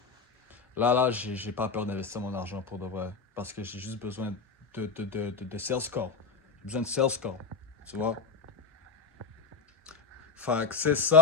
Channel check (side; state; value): right; quieter; 4.9 dB